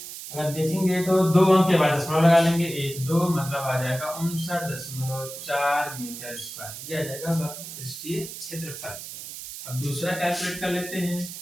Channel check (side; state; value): right; noise; hiss, 11 dB below the sound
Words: अगर देखेंगे तो 2 अंक के बाद दशमलव लगा लेंगे, 1 2 मतलब आ जाएगा 59.4 मीटर स्क्वायर, ये आ जाएगा वक्र पृष्ठीय क्षेत्रफल। अब दूसरा कैलकुलेट कर लेते हैं।